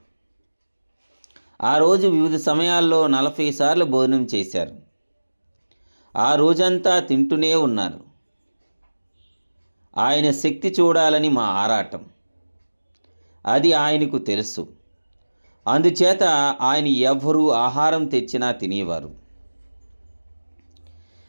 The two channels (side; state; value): both; inverted; correlation -1.00